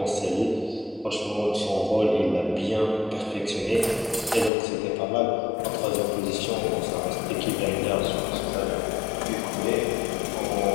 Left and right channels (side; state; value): right; drops out; at 4.5 s